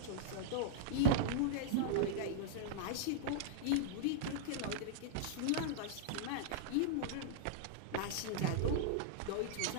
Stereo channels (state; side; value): different; both; correlation -0.02